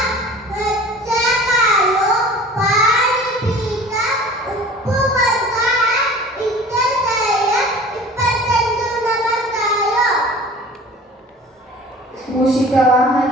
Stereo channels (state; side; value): normal; both; correlation 0.43